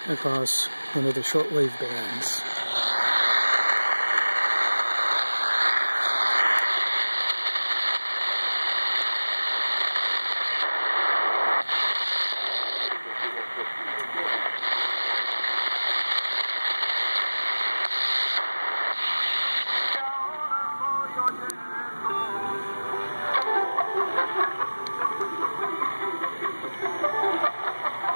across one of the shortwave bands.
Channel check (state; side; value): inverted; both; correlation -1.00